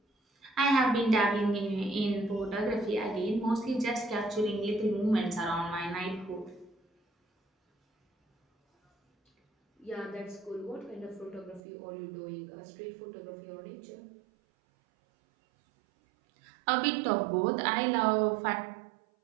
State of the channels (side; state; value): left; drops out; at 11.6 s